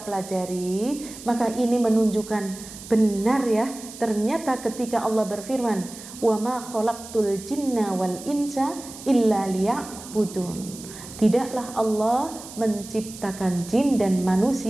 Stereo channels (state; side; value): noise; right; hiss, 15 dB below the sound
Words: pelajari, maka ini menunjukkan benar ya, ternyata ketika Allah berfirman, wa ma khalaqtul jinna wal insa illa liya'budun, tidaklah Allah menciptakan jin dan